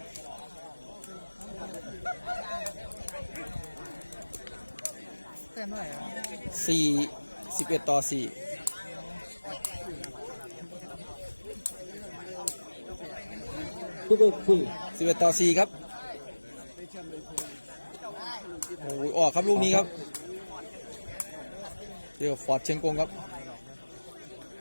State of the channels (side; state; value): both; inverted; correlation -1.00